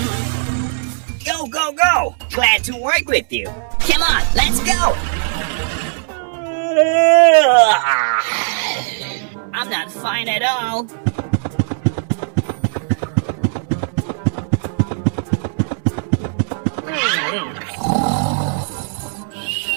Go, go, go! Glad to work with you. Come on, let's go! I'm not fine at all.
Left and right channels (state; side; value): silent; left; 62 dB below the other